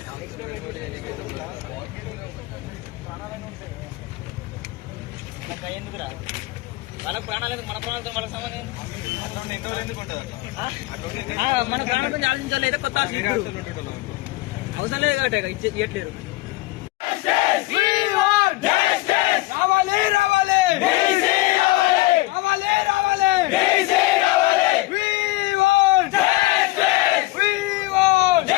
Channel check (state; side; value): quieter; right; 19.7 dB